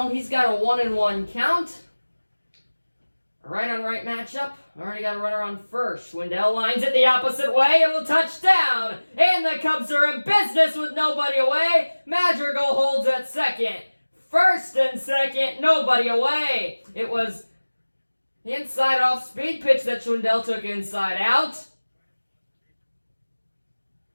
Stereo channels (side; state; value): both; inverted; correlation -1.00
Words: He's got a 1-1 count. A right-on-right matchup. Already got a runner on first. Schwindel lines it the opposite way and will touch down. And the Cubs are in business with nobody away. Madrigal holds at second. First and second, nobody away. It was the inside off speed pitch that Schwindel took inside out.